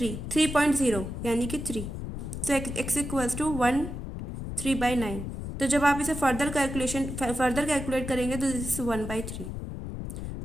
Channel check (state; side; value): noise; left; rumble, 7 dB below the sound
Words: यानी कि 3। सो एक्स इक्वल्स टू 1/3/9। तो जब आप इसे फर्दर कैलकुलेट करेंगे तो दिस इज 1/3।